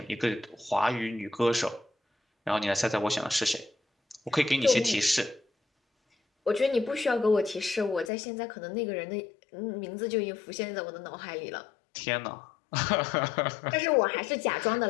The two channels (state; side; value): drops out; right; at 8.1 s